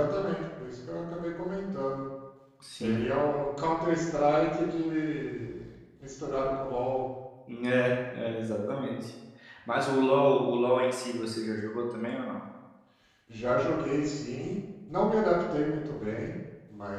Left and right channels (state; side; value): identical; both; correlation 1.00